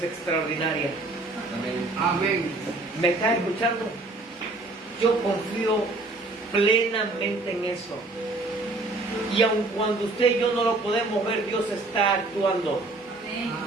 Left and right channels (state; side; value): quieter; left; 3.1 dB